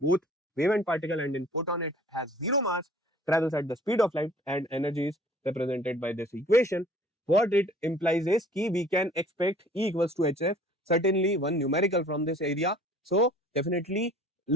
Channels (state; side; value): normal; both; correlation 0.51